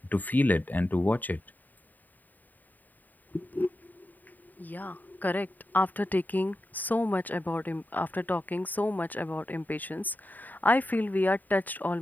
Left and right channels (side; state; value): right; late; 0.086 ms